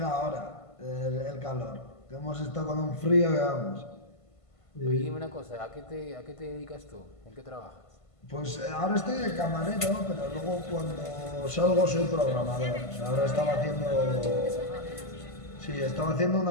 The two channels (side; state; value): right; late; 1.5 ms